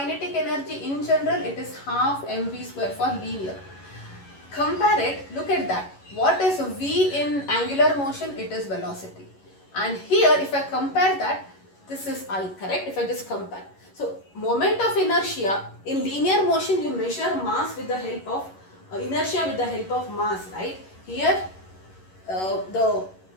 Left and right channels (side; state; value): right; late; 11 ms